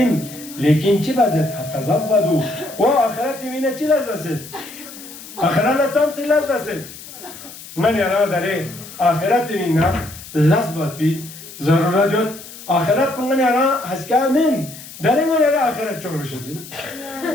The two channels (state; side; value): noise; left; hiss, 15 dB below the sound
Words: لكن شيء بزت فتزودوا وآخرتي من شيء لازم آخرنا تام شيء لازم من يرى داره آخرتي منا لازمتي ضرورة آخرت من يرى هسكا من داره من يرى آخرت çok رشدين